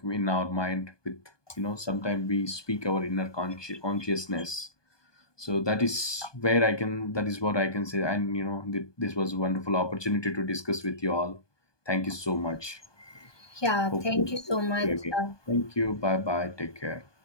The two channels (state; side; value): late; right; 1.2 ms